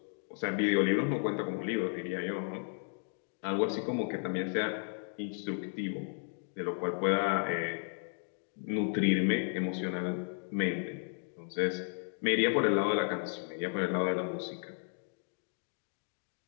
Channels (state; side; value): silent; right; 55 dB below the other